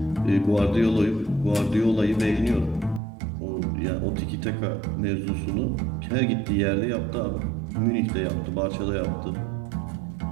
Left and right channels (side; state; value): left; drops out; at 3.0 s